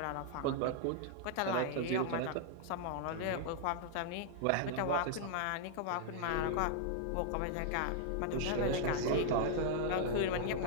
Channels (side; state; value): both; different; correlation 0.00